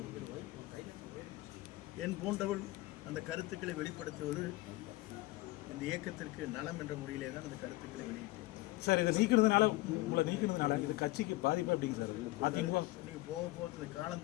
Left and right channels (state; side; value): quieter; right; 19.5 dB